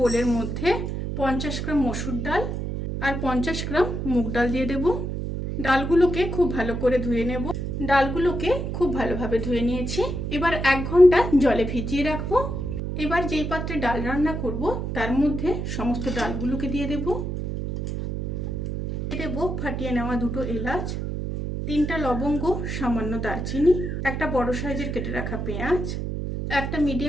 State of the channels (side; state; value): right; noise; hum, 3 dB below the sound